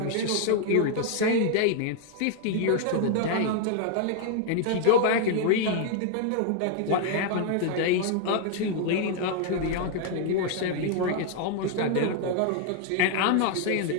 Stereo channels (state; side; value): different; both; correlation 0.00